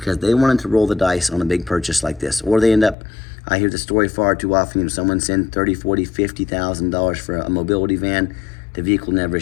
they wanted to roll the dice on a big purchase like this. Or they end up, I hear the story far too often, someone send $30,000, $40,000, $50,000 for a mobility van, the vehicle never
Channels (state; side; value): drops out; right; at 3.0 s